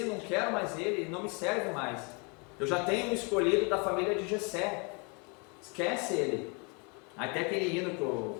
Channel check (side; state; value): right; quieter; 32.8 dB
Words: não quero mais ele, não me serve mais. Eu já tenho um escolhido da família de Jessé. Esquece ele. Até aquele hino que o